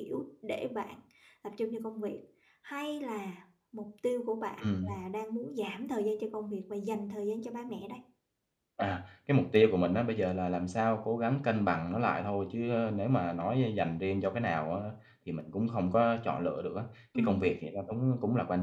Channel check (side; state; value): both; identical; correlation 1.00